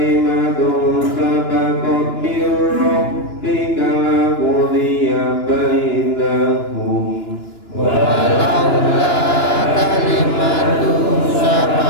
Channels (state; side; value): late; right; 2.9 ms